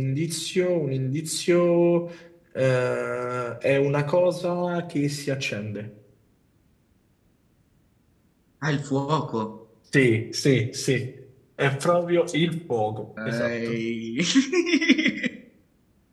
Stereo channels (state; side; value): identical; both; correlation 1.00